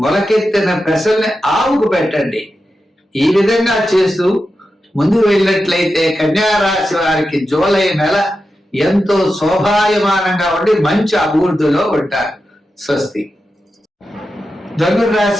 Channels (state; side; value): normal; both; correlation 0.90